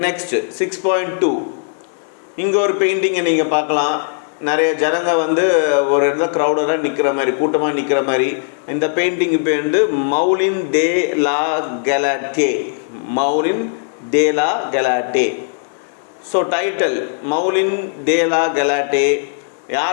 நெக்ஸ்ட் 6.2 இங்கே ஒரு பெயிண்டிங்கை நீங்கள் பார்க்கலாம். நிறைய ஜனங்க வந்து ஒரு இடத்துல க்ரௌடராக நிற்கிற மாதிரி, கூட்டமாக நிற்கிற மாதிரி. இந்த பெயிண்டிங் பேர் வந்து மௌலின் de la Galette. மௌலின் de la கெலாட்டே. So title மௌலின் de la கெலாட்டே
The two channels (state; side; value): silent; right; digital silence